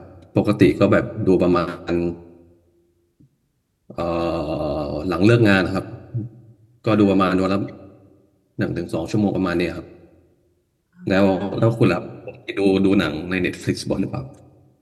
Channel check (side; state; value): both; identical; correlation 1.00